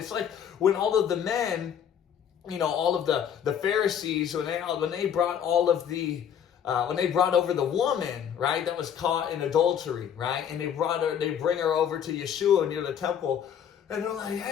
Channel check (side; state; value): right; quieter; 8.7 dB